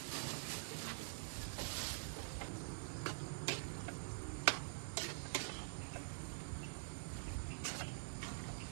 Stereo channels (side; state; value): left; silent; digital silence